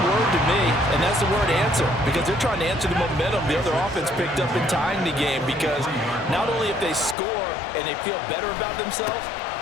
word to me, and that's the word answer, because they're trying to answer the momentum the other offense picked up in tying the game, because not only if they score and they feel better about themselves,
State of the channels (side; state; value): right; drops out; at 7.2 s